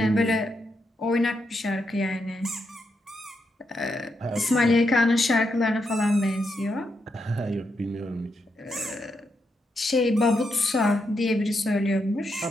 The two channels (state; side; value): normal; both; correlation 0.82